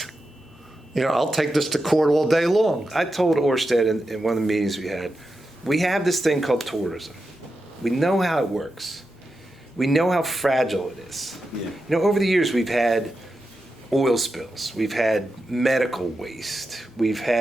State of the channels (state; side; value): normal; both; correlation 0.89